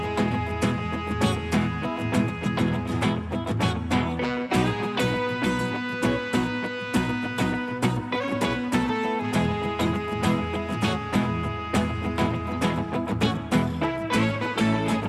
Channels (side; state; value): both; identical; correlation 1.00